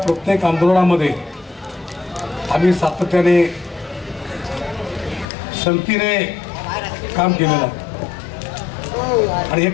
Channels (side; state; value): right; drops out; at 5.2 s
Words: आंदोलनामध्ये आम्ही सातत्याने संगतीने काम केलेलं आहे. आणि हे